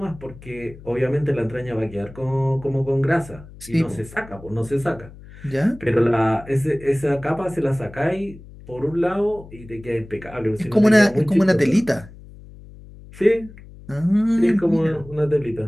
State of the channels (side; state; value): left; noise; hum, 19 dB below the sound